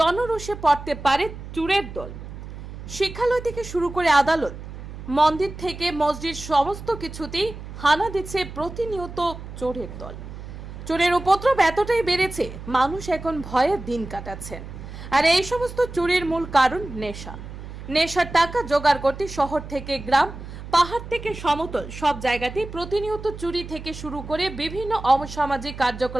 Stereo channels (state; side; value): noise; right; hum, 12 dB below the sound